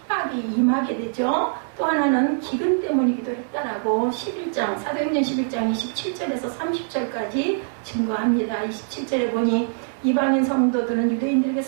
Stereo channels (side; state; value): left; silent; digital silence